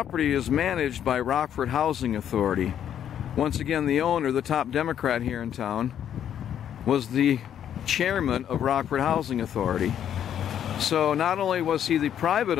is managed by Rockford Housing Authority. Once again, the owner, the top Democrat here in town, was the chairman of Rockford Housing Authority. So not only was he the private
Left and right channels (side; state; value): right; quieter; 9.7 dB